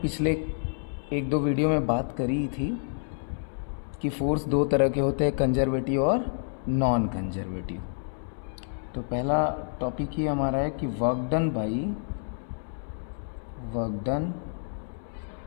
एक दो वीडियो में बात करी थी कि फोर्स दो तरह के होते हैं, कंजर्वेटिव और नॉन कंजर्वेटिव। तो पहला टॉपिक ही हमारा है कि work done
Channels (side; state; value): right; silent; 59 dB below the other